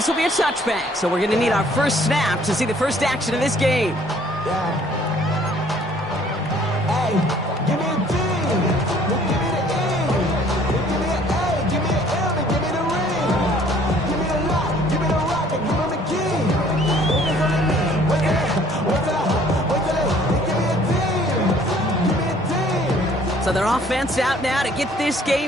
will be a touchback, so we're going to need our first snap to see the first action of this game. So their offense out now to get this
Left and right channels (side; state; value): both; normal; correlation 0.58